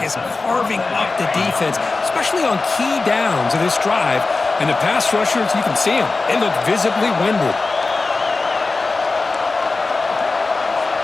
is carving up the defense, especially on key downs of this drive. And the pass rushers, you can see them. They look visibly winded.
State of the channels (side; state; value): right; quieter; 3.7 dB